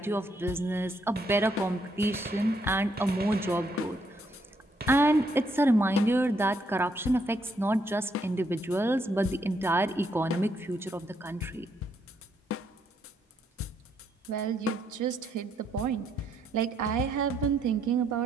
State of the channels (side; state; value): both; normal; correlation 0.74